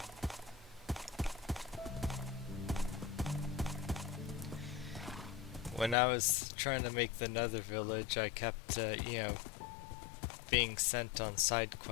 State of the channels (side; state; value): right; drops out; at 6.0 s